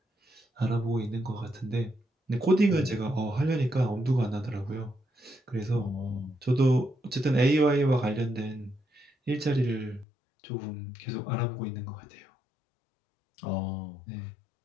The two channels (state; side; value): drops out; right; at 10.1 s